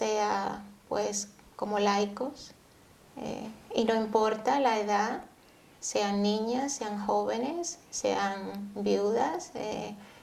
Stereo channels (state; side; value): identical; both; correlation 1.00